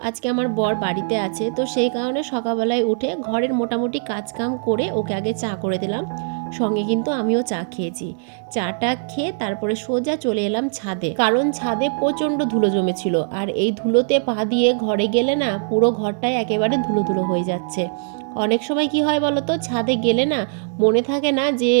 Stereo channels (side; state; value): left; silent; digital silence